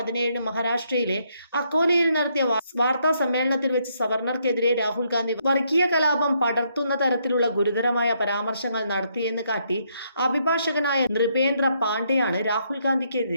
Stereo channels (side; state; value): both; inverted; correlation -0.73